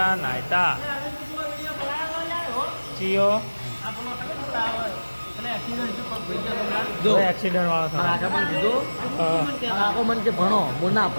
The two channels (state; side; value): inverted; both; correlation -1.00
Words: નાયતા ચિયો એક્સિડન્ટ વાળો આખો મન કે ભણો હું ના